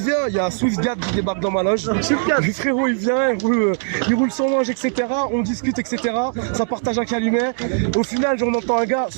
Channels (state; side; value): silent; left; 61 dB below the other